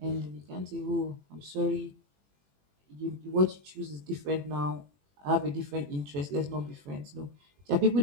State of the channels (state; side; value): late; left; 21 ms